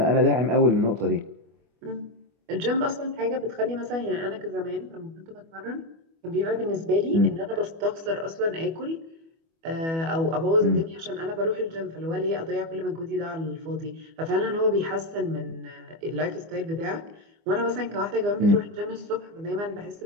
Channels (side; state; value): left; late; 24 ms